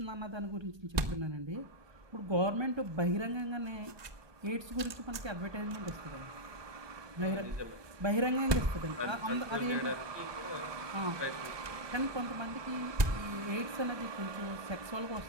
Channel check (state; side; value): late; left; 1.2 ms